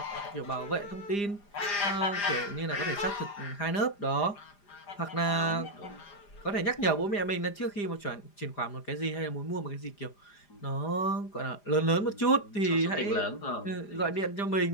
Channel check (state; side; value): late; right; 4.9 ms